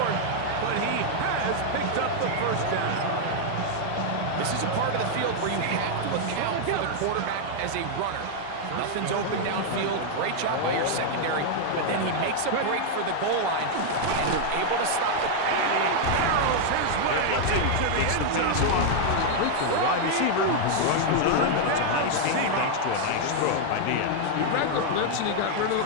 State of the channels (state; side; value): different; both; correlation 0.00